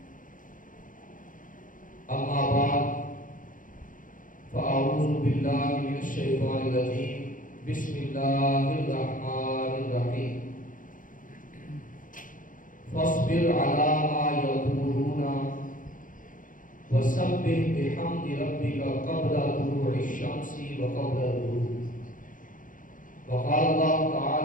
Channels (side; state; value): right; late; 0.39 ms